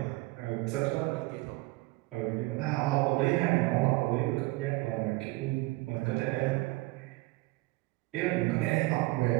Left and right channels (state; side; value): quieter; left; 21.8 dB